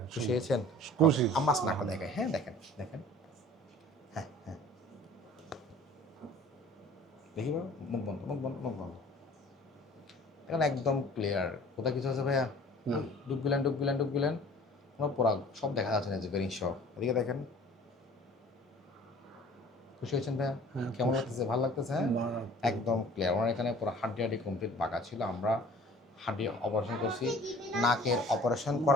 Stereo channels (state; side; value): normal; both; correlation 0.48